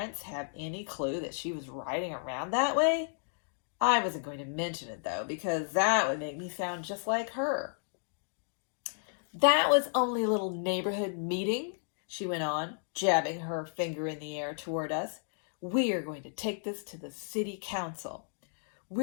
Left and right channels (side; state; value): right; silent; digital silence